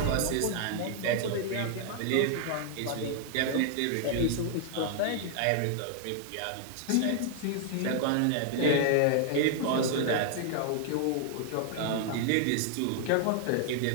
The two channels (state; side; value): different; both; correlation 0.00